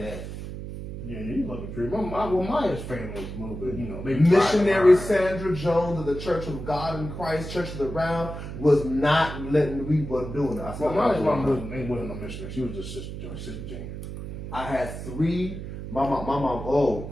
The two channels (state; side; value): noise; right; hum, 8 dB below the sound